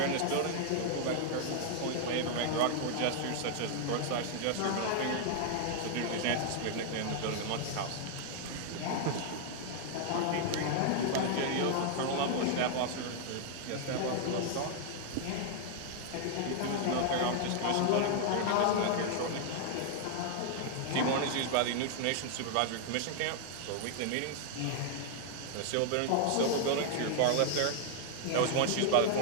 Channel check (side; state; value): both; different; correlation 0.00